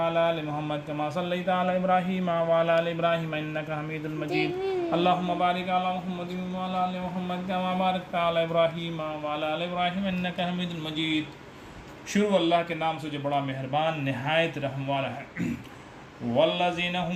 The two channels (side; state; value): both; identical; correlation 1.00